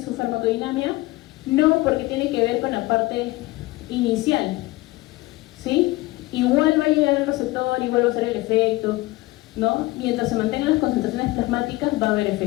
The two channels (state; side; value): quieter; right; 20.0 dB